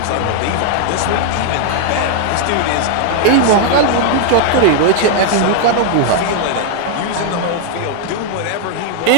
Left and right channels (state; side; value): different; both; correlation -0.01